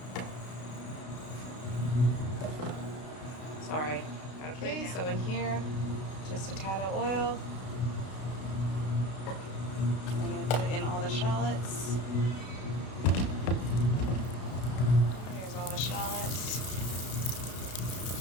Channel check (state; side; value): late; right; 32 ms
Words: Sorry. Okay, so in here, just a tad of oil. I'm going to put in all the shallots. Here's all the shallots.